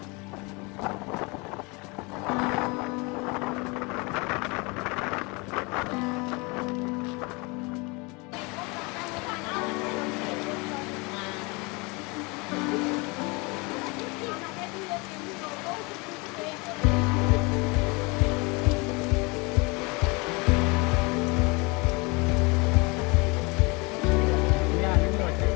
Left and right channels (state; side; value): quieter; right; 27.8 dB